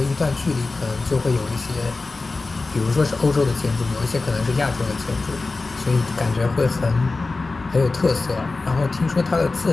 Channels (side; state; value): right; quieter; 3.6 dB